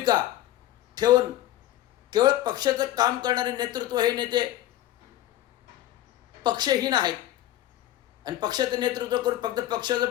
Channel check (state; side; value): quieter; right; 13.9 dB